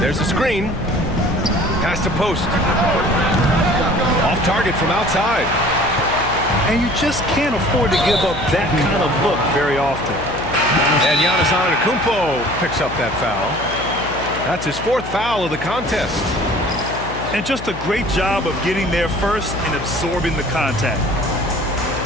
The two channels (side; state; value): left; noise; hum, 10 dB below the sound